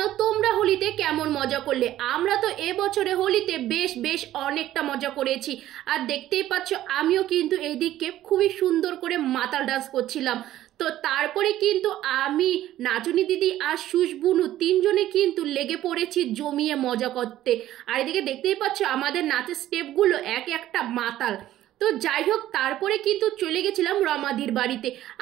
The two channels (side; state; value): left; quieter; 13.5 dB